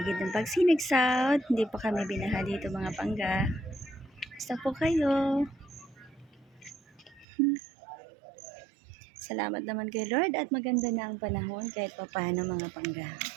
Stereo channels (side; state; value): left; drops out; at 7.2 s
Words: ng Pagsinag South. Hindi pa kami binaha dito mga pangga. Basta po kayo. Salamat naman kay Lord at maganda na ang panahon kahit pa paano mga pangga.